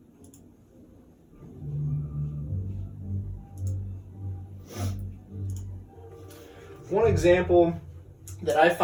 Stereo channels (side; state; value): both; identical; correlation 1.00